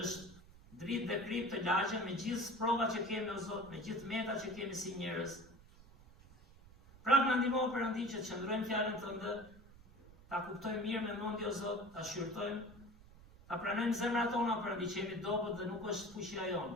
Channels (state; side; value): noise; right; rumble, 21 dB below the sound